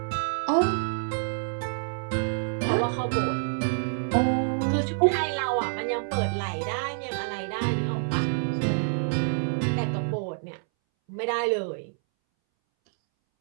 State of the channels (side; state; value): left; silent; 60 dB below the other